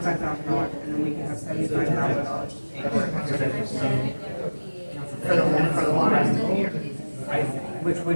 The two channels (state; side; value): inverted; both; correlation -1.00